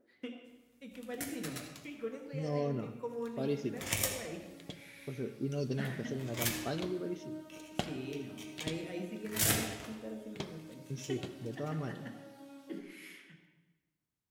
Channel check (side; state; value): both; identical; correlation 1.00